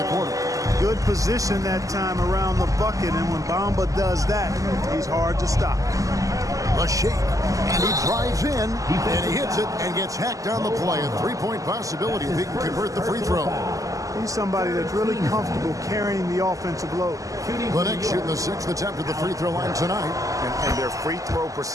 quarter. Good position that time around the bucket, and when Bamba does that, he's hard to stop. A shake, and he drives in, and he hits it and gets hacked on the play. A three-point possibility if he can convert the free throw. He's somebody that's really comfortable carrying the offensive load. The Knicks shooting the 6th attempt at the free throw line tonight. And their free throw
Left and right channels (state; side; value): late; left; 0.16 ms